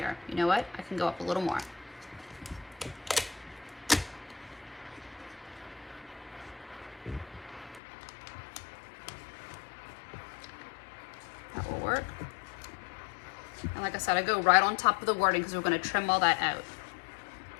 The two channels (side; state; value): right; drops out; at 7.8 s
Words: You know what? I can go up a little more. That will work. And like I said, I go right on top of the wording because we're gonna trim all that out.